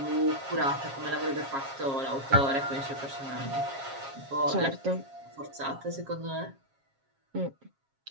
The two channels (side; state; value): left; late; 7.4 ms